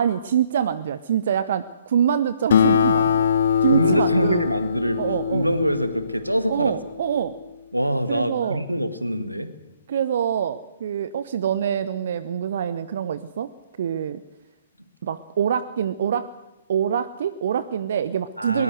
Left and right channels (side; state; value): both; inverted; correlation -0.67